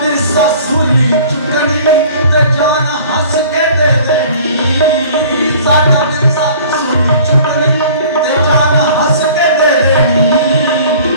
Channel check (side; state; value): both; inverted; correlation -0.48